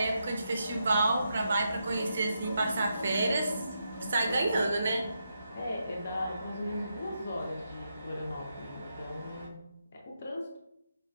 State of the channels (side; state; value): both; inverted; correlation -0.83